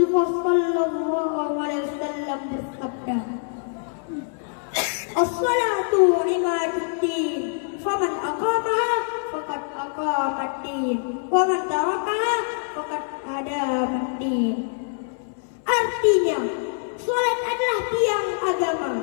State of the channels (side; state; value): right; silent; 62 dB below the other